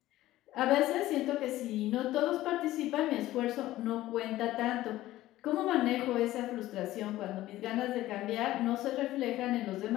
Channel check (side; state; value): right; quieter; 15.6 dB